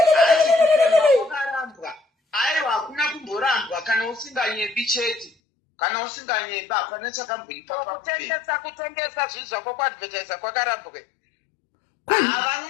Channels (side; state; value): right; drops out; at 5.3 s